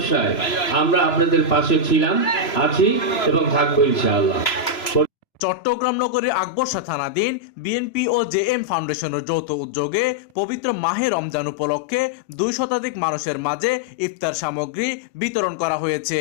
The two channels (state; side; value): late; right; 3.0 ms